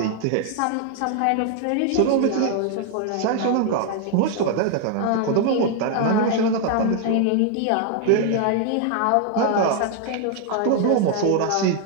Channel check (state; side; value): different; both; correlation 0.00